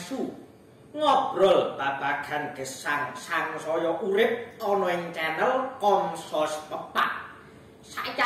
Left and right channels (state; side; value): identical; both; correlation 1.00